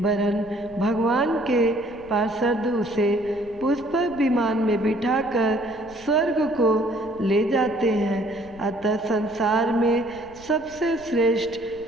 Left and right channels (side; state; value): left; noise; rumble, 23 dB below the sound